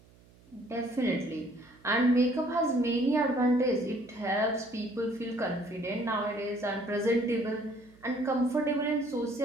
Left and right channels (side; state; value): right; noise; hum, 27 dB below the sound